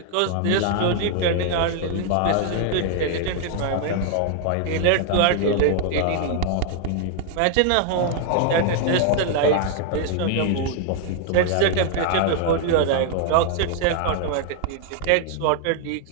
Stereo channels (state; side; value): different; both; correlation 0.00